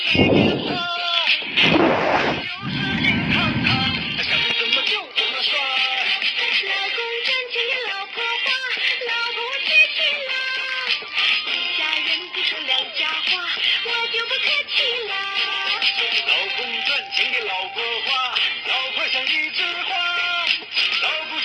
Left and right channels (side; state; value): both; identical; correlation 1.00